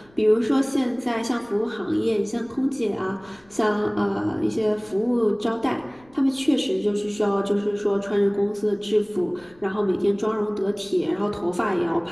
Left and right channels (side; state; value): left; noise; rumble, 29 dB below the sound